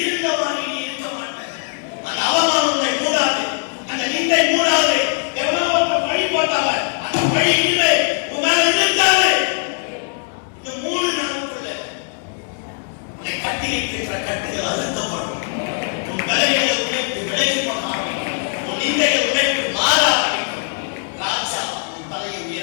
இருந்தவாறு நீ இருக்க மாட்டாய். அந்த அவமானம் உன்னை மூடாது, அந்த நிந்தை மூடாது. எவனோ ஒருத்தன் பழி போட்டாங்க, அந்த பழி இல்லை உன் மேல இருக்காது. இந்த 3 நாளுக்குள்ள உன்னை கட்டி வைத்திருக்கிற கட்டுகள் அழுத்தப்படும், உன் பலவீனங்களை உடைத்து விலகி போக ஆரம்பிக்கும், உன் நிந்தைகளை உடைத்து மாற ஆரம்பிக்கும். ராஜா உன் தலையை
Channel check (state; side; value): silent; right; 55 dB below the other